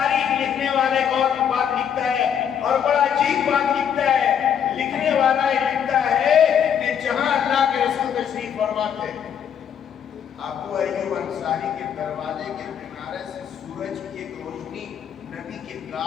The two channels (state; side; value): quieter; right; 8.4 dB